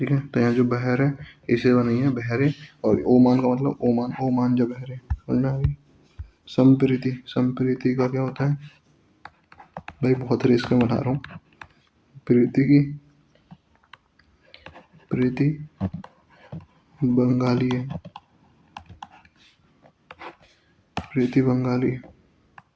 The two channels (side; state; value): both; identical; correlation 1.00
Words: है। तो यहाँ जो बहर है इसे बनी है बहरे, और ओमान का मतलब ओमान, ओमान जब बहरे, समझ में आ गई। संप्रीति, संप्रीति का क्या होता है भाई, बहुत रिस्क में बता रहा हूँ। प्रीति की, प्रीति बंगाली है, प्रीति बंगाली,